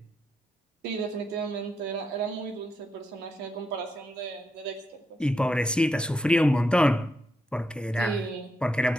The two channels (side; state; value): both; normal; correlation 0.82